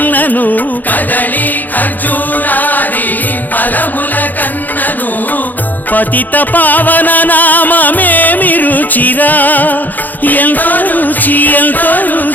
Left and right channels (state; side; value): late; right; 0.084 ms